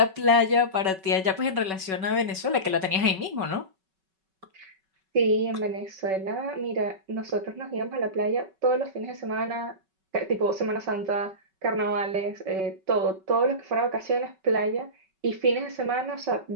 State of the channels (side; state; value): left; late; 5.3 ms